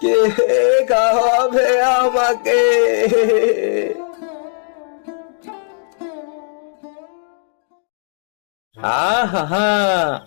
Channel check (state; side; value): silent; right; digital silence